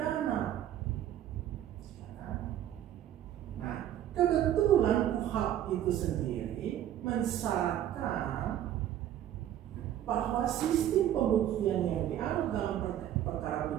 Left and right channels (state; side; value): quieter; left; 11.5 dB